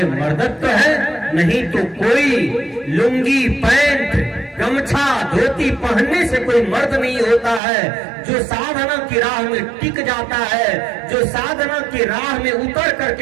मर्दत्व है, नहीं तो कोई लुंगी, पैंट, गमछा, धोती पहनने से कोई मर्द नहीं होता है। जो साधना की राह में टिक जाता है, जो साधना की राह में उतर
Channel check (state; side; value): drops out; left; at 7.6 s